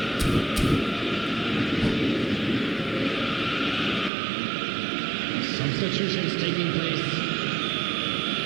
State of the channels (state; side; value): drops out; left; at 4.1 s